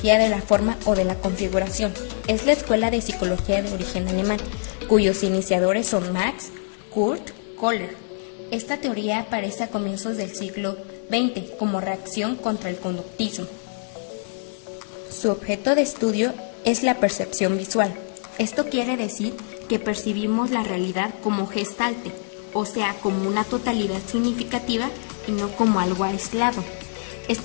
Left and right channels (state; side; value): silent; right; digital silence